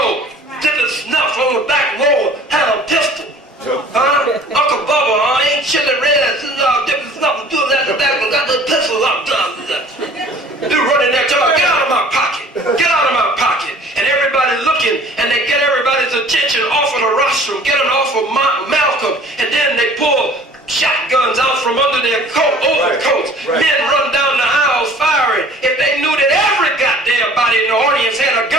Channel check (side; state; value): both; normal; correlation 0.49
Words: did the snuff on the back row, had a pistol. Huh? Uncle Bubba, ain't chili red, dipping snuff, doing that, got the pistol up. They're running there, tell her, get out of my pocket. Get out of my pocket. And everybody looking, and they get everybody's attention off of the rostrum, get them off of Malcolm, and then they pull shotguns out from under their overcoats. Right. Men run down the aisles firing. If they knew that every goddamn body in the audience had a